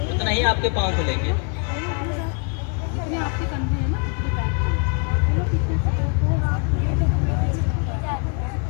उतना ही आपके पाँव खुलेंगे। आपके कंधे हैं ना, इतने बैक चलो पीछे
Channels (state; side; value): quieter; right; 37.6 dB